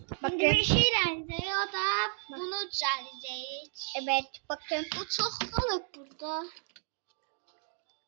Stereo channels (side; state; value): left; silent; digital silence